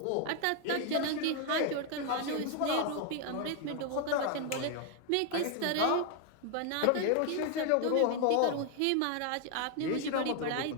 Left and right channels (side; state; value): both; different; correlation 0.00